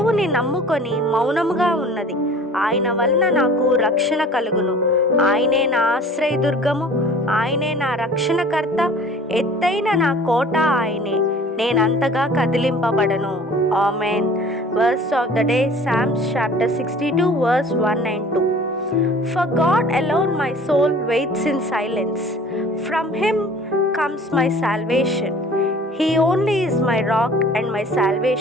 నమ్ముకొని మౌనముగా ఉన్నది. ఆయన వలన నాకు రక్షణ కలుగును. ఆయనే నా ఆశ్రయదుర్గము, ఆయనే నా రక్షణకర్త, ఎత్తైన నా కోట ఆయనే, నేనంతగా కదిలింపబడను. Amen. Verse of the day, Psalms chapter 62 verse 1 and 2. For God alone my soul waits in silence. From him comes my salvation. He only is my rock and my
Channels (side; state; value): both; normal; correlation 0.47